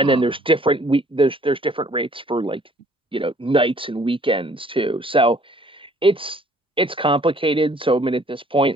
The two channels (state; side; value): normal; both; correlation 0.58